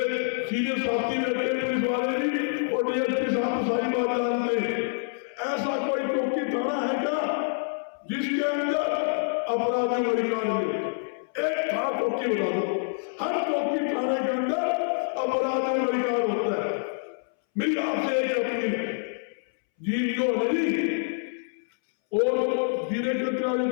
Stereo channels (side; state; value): right; silent; 60 dB below the other